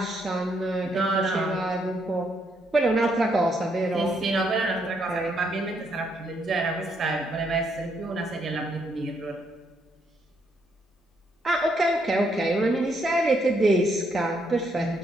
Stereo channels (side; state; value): both; normal; correlation 0.75